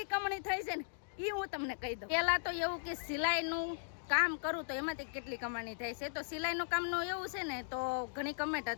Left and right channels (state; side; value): silent; right; digital silence